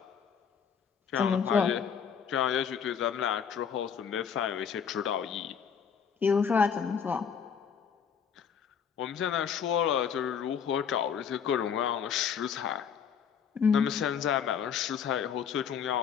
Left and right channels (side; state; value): right; quieter; 7.3 dB